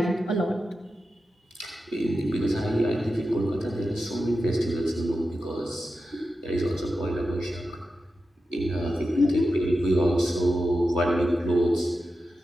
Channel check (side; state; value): both; normal; correlation 0.91